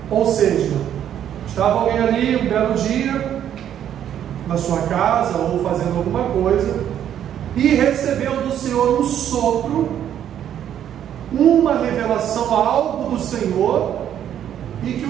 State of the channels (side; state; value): left; quieter; 10.1 dB